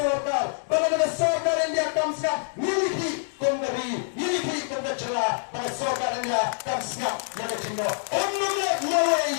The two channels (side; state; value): right; silent; digital silence